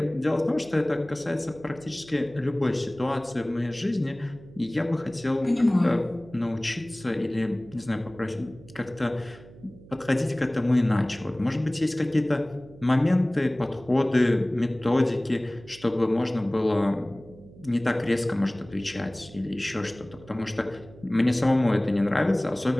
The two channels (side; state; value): right; noise; hum, 21 dB below the sound